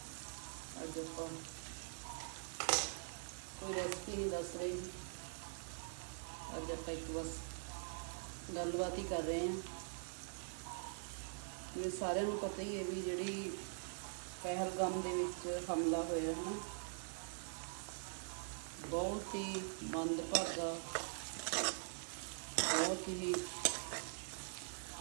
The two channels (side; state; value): left; silent; digital silence